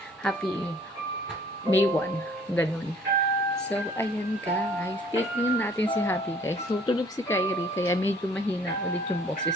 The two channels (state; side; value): normal; both; correlation 0.56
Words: Happy May 1. Ganun. So, ayan guys. Tignan natin si Happy guys. So, tulog si Kyrie kaya medyo mahina ulit yung